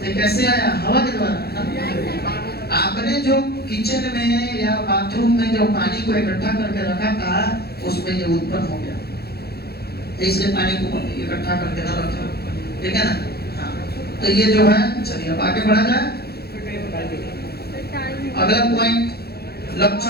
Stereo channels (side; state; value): right; late; 0.46 ms